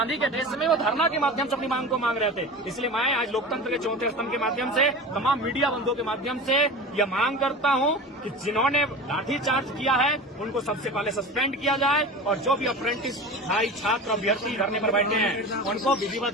के देश में वो धरना के माध्यम से अपनी मांग को मांग रहे थे। इसलिए मैं आज लोकतंत्र के चौथे स्तंभ के माध्यम से, तमाम मीडिया बंधुओं के माध्यम से यह मांग करता हूँ कि जिन्होंने लाठीचार्ज किया है उनको सबसे पहले सस्पेंड किया जाए, और जो भी अप्रेंटिस भाई, छात्र, अभ्यर्थी धरने पर बैठे हैं उनको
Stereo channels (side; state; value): both; normal; correlation 0.32